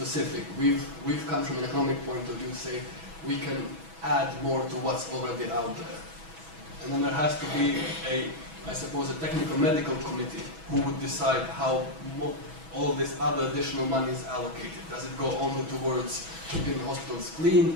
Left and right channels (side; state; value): left; late; 6.1 ms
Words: We've come from an economic point of view, say we can add more to what's already out there, and then there has to be I suppose, a technical medical committee who would decide how all this other additional money is allocated? Does it go only towards keeping hospitals